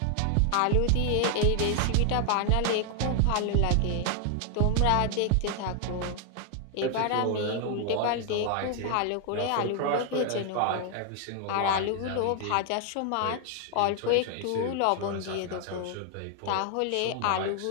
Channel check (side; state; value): both; different; correlation 0.00